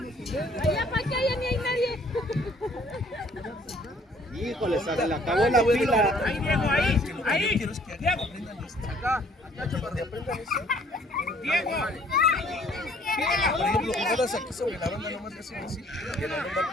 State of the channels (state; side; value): normal; both; correlation 0.59